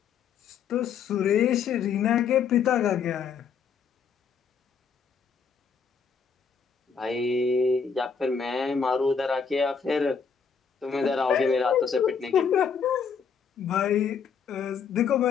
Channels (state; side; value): quieter; right; 6.3 dB